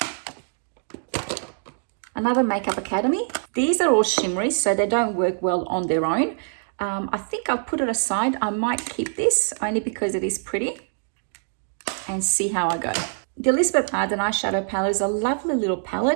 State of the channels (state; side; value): silent; left; digital silence